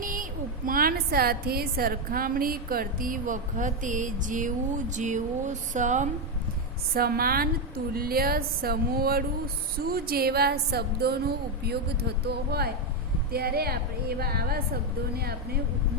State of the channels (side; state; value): both; normal; correlation 0.06